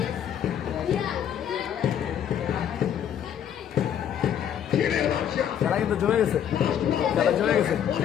ছিঁড়ে বাদশা খেলা কিন্তু জমে গেছে, খেলা জমে গেছে।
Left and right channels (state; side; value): quieter; right; 9.3 dB